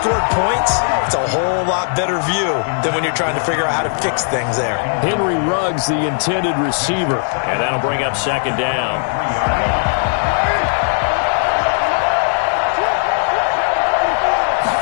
points, it's a whole lot better view than when you're trying to figure out how to fix things there. Henry Ruggs, the intended receiver. And that'll bring up 2nd down.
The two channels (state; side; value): silent; right; digital silence